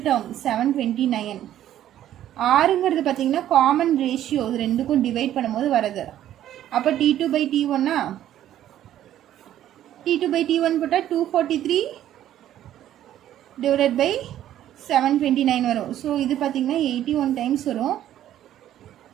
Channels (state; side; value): quieter; left; 12.0 dB